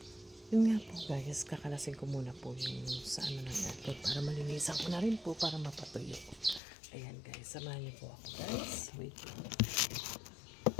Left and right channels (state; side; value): drops out; right; at 6.6 s